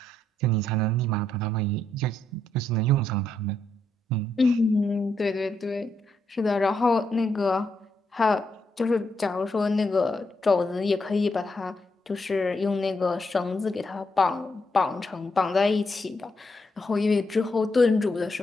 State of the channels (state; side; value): normal; both; correlation 0.79